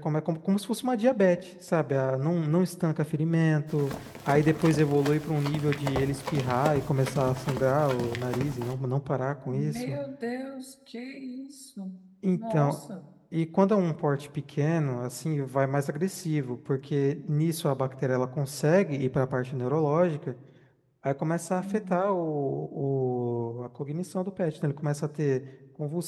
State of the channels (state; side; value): identical; both; correlation 1.00